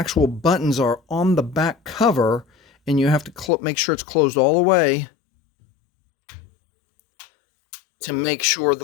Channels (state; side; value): drops out; right; at 3.5 s